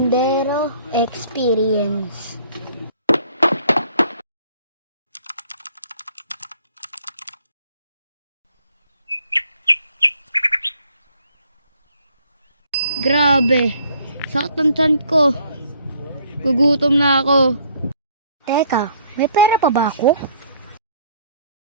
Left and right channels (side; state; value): both; inverted; correlation -0.62